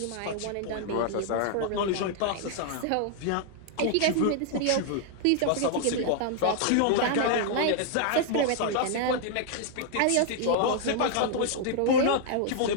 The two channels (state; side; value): different; both; correlation -0.01